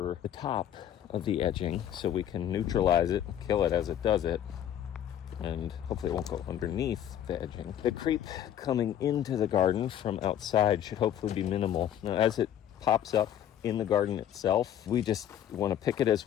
the top of the edging so we can neutralize it, kill it as it does it, and hopefully it won't go underneath the edging. The creep coming into the garden from outside should hopefully be minimal. Now, as it pops up in the garden itself, we just want to pick it as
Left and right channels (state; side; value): quieter; right; 10.6 dB